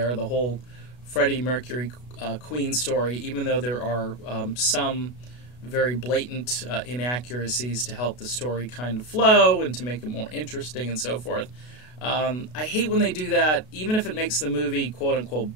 The whole Freddie Mercury Queen story, even though there are some very blatant inaccuracies to help the story kind of flow and to make it more interesting and so forth. I hate when they do that, even if it makes the movie quote-unquote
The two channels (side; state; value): right; late; 32 ms